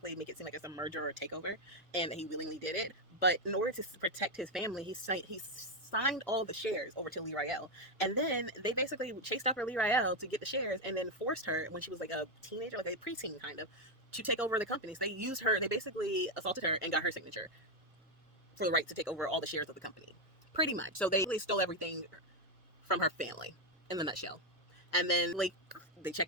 make it seem like it's a merger or a takeover, and he willingly did it. But in order to protect his family, he signed all the shares over to Lee Rael, and then they basically chased after Lee Rael to get the shares, and then forced her when she was like a teenager, like a preteen kind of, to take over the company. So they used her. They basically assaulted her and got her signature for the right to take over all the shares of the company, pretty much. So they stole everything from her family, in the nutshell. And then, like, they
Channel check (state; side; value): normal; both; correlation 0.05